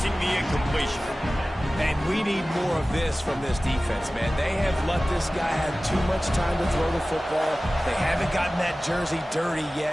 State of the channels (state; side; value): normal; both; correlation 0.97